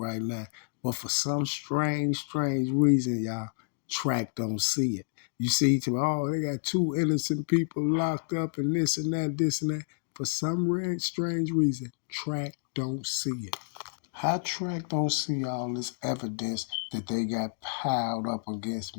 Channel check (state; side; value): silent; right; digital silence